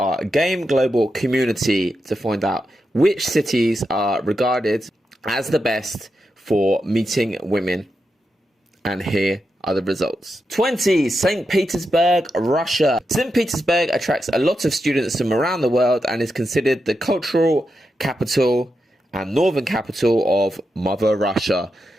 Game Global community to find out which cities are regarded as the best for meeting women. And here are the results. 20. St. Petersburg, Russia. St. Petersburg attracts a lot of students from around the world and is considered the cultural capital and northern capital of Mother Russia.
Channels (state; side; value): normal; both; correlation 0.87